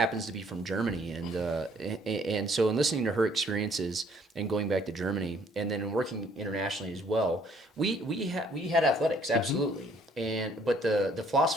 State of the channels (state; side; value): normal; both; correlation 0.62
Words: to be from Germany, and so in listening to her experiences and going back to Germany, and then working internationally as well, we had athletics, absolutely, but the